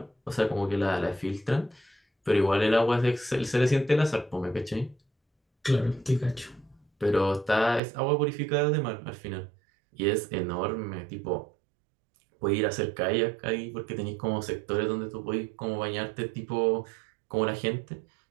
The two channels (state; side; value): drops out; left; at 7.8 s